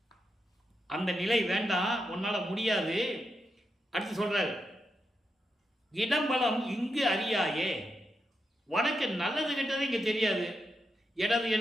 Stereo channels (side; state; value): both; normal; correlation 0.85